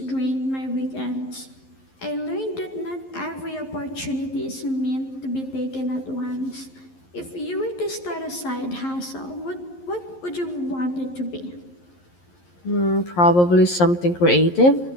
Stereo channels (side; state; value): right; late; 11 ms